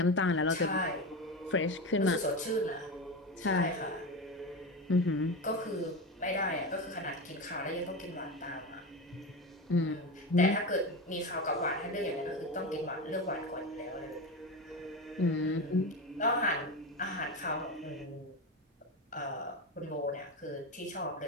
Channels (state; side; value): normal; both; correlation 0.21